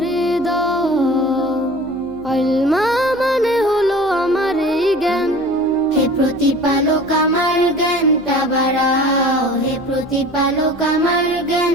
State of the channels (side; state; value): right; noise; hum, 24 dB below the sound